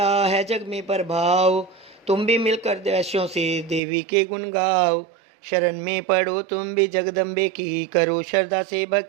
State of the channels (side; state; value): left; drops out; at 3.8 s